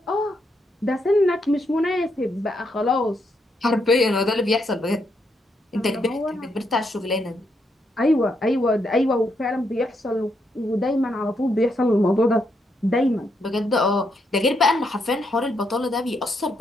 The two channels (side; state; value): both; normal; correlation 0.78